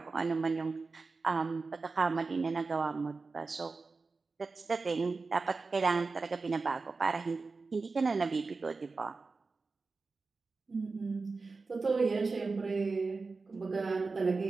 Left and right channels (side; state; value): left; quieter; 4.1 dB